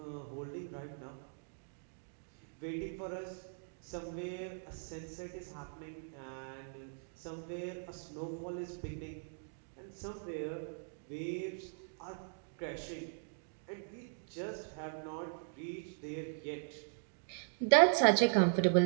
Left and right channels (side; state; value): left; silent; digital silence